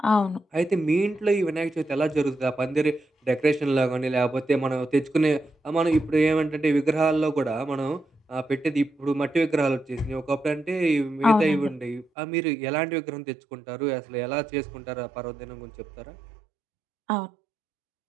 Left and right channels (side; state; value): left; drops out; at 12.1 s